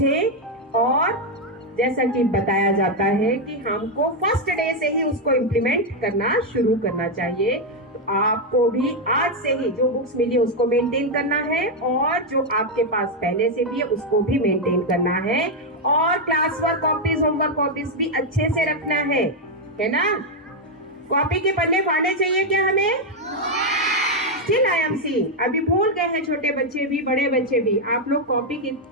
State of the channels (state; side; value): normal; both; correlation 0.02